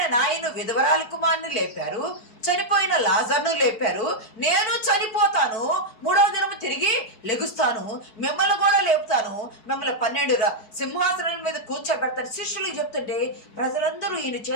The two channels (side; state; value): right; late; 4.7 ms